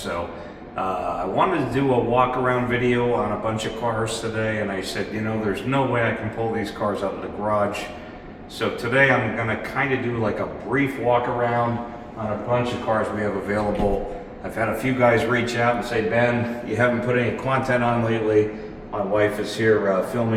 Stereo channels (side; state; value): both; identical; correlation 1.00